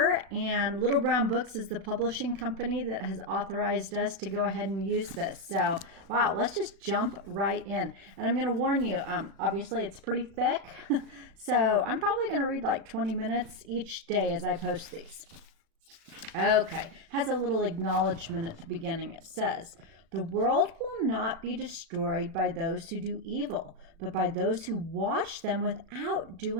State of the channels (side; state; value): left; late; 36 ms